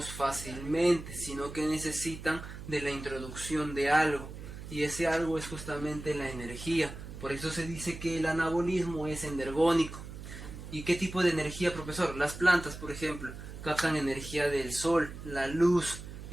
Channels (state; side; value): noise; right; hum, 11 dB below the sound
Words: fácilmente, sino que necesitan de la introducción de algo, y ese algo es justamente la energía. Por eso se dice que el anabolismo es energónico. ¿Y qué tipo de energía, profesor? Las plantas, por ejemplo, captan energía del sol, la luz.